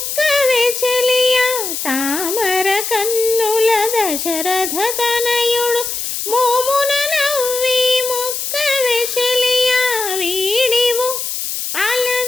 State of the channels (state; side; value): noise; left; hiss, 4 dB below the sound